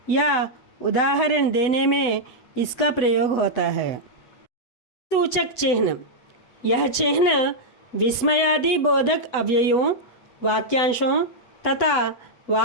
या उदाहरण देने में इसका प्रयोग होता है। सूचक चिन्ह, यह चिन्ह विस्मयादि बोधक अव्ययों, वाक्यांशों तथा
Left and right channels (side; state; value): right; late; 8.0 ms